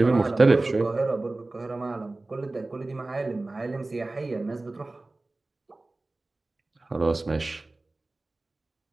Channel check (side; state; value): left; quieter; 3.0 dB